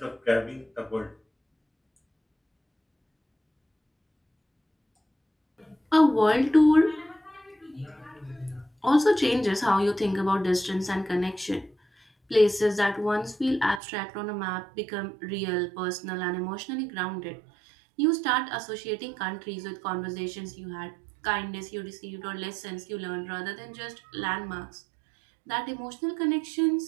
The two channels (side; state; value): left; drops out; at 13.8 s